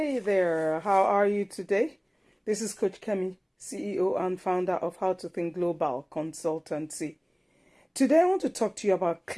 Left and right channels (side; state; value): both; identical; correlation 1.00